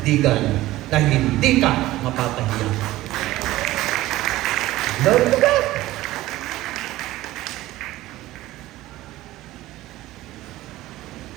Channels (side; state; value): left; quieter; 16.6 dB